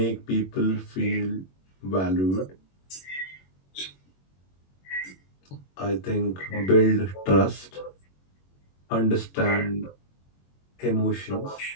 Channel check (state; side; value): late; right; 21 ms